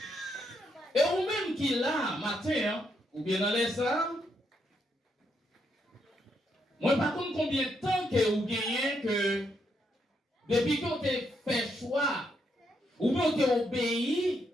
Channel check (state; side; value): normal; both; correlation 0.78